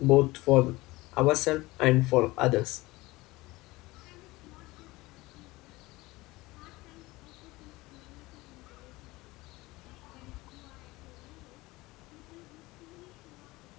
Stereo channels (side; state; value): right; quieter; 20.6 dB